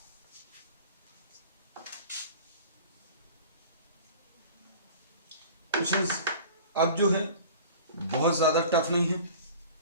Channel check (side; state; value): both; inverted; correlation -0.42